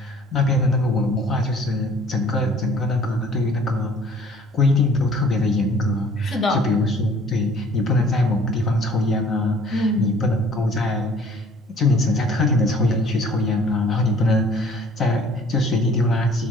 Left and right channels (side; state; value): both; normal; correlation 0.54